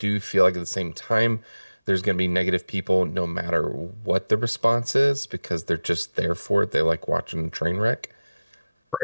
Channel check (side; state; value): both; inverted; correlation -0.98